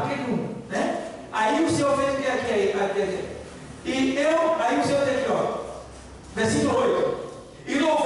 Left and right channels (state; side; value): identical; both; correlation 1.00